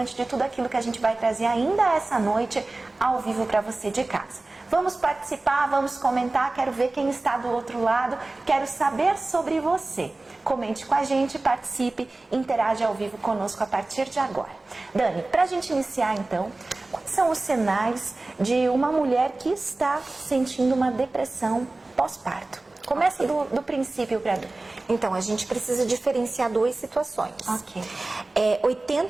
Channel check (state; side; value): quieter; left; 3.1 dB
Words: de tudo aquilo que a gente vai trazer ainda essa noite ao vivo para você de casa. Vamos participar, vamos comentar, quero ver quem está do outro lado, quero saber sobre você. Comente com a gente, participe, interage ao vivo conosco a partir de agora. Dani, para a gente iniciar então, quais são os sinais de uma mulher que está sentindo uma depressão pós-parto? Começa do princípio para Dani. Então, a gente precisa diferenciar duas situações. Ok.